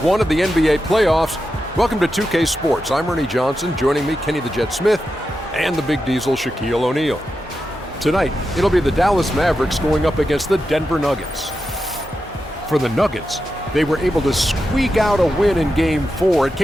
of the NBA playoffs. Welcome to 2K Sports. I'm Ernie Johnson. Joining me, Kenny the Jet Smith, and the Big Diesel, Shaquille O'Neal. Tonight, it'll be the Dallas Mavericks going up against the Denver Nuggets. For the Nuggets, they were able to squeak out a win in Game 4. It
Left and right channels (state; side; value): normal; both; correlation 0.89